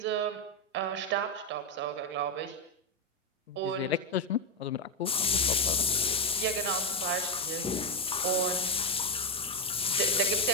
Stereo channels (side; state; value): both; normal; correlation 0.04